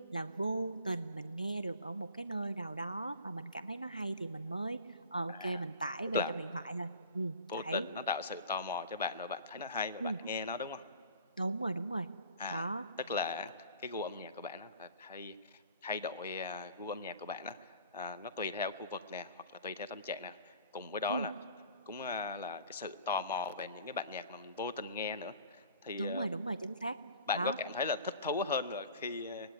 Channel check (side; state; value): both; inverted; correlation -0.44